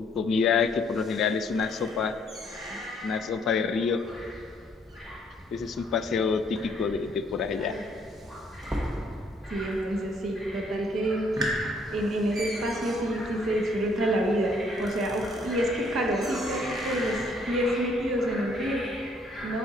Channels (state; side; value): normal; both; correlation 0.65